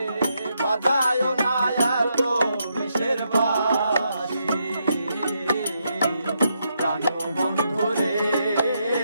বাজায় না এত বিষের বাঁশি, প্রাণ বন্ধু রে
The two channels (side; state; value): both; inverted; correlation -0.80